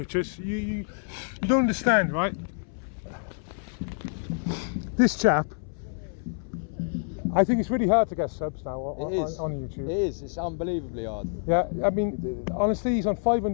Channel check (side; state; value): right; silent; 60 dB below the other